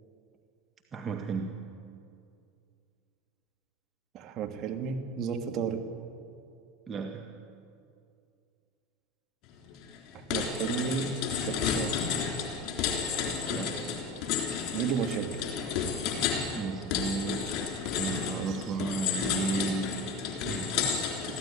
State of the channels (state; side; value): normal; both; correlation 0.30